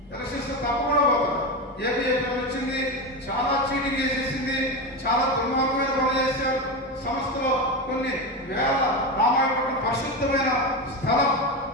ఎలక్షన్స్ తప్పకుండా పోతాయి. ఏపీఎఫ్ఎం వచ్చింది, చాలా చీటింగ్ చేసేసింది, చాలా దుర్మార్గమైన పనులు చేశారు. సంస్థలో కొన్ని వేల రామాయపట్నం పరిశుద్ధమైన స్థలం,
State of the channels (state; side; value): normal; both; correlation 0.17